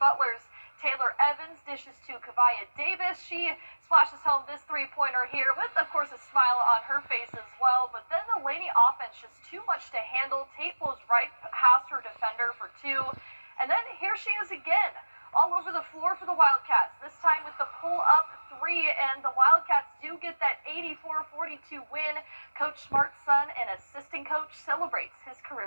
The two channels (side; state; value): both; inverted; correlation -1.00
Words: Taylor Evans dishes to Kavaya Davis. She splashes home this 3-pointer here with, of course, a smile on her face as well. But then the Laney offense just too much to handle. Tate blows right past her defender for 2. And then here she is again, all over the floor for the Wildcats, this time with the pull-up 3. And the Wildcats do get that 84-42 win. Coach Smart's son and assistant coach celebrates his